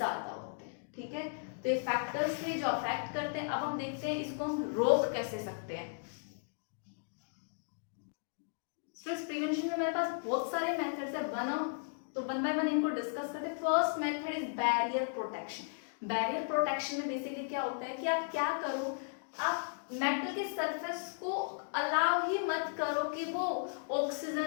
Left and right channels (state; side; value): silent; right; digital silence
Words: होते हैं। ठीक है, तो ये फैक्टर्स थे जो अफेक्ट करते हैं। अब हम देखते हैं इसको हम रोक कैसे सकते हैं। स्ट्रेस प्रिवेंशन में मेरे पास बहुत सारे मेथड्स है, तो वन बाय वन इनको डिस्कस करते हैं। First method is barrier protection. Barrier protection में बेसिकली क्या होता है कि आप क्या करो, आप मेटल के सरफेस को अलाउ ही मत करो कि वो